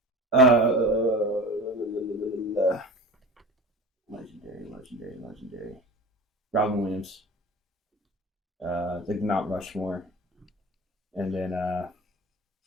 Legendary. Robin Williams. Like Mount Rushmore. And then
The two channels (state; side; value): normal; both; correlation 0.35